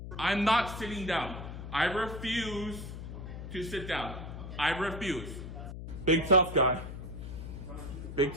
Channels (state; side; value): noise; left; hum, 9 dB below the sound